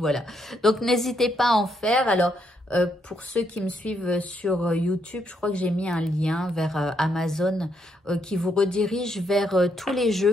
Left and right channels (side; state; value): both; normal; correlation 0.76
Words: Donc n'hésitez pas à en faire. Alors pour ceux qui me suivent sur YouTube, je crois que j'ai mis un lien vers Amazon qui vous redirige vers tous les